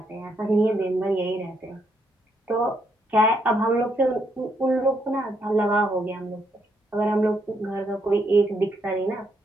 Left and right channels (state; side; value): normal; both; correlation 0.75